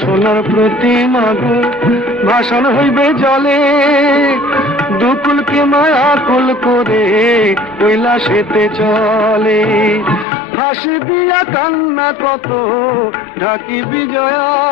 সোনার প্রতিমা গো ভাসান হইবে জলে। দুকুলকে মায়া কুল করে কৈলাসেতে চলে। হাসি দিয়া কান্না কত ঢাকি বিজয়।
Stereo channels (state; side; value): drops out; right; at 10.2 s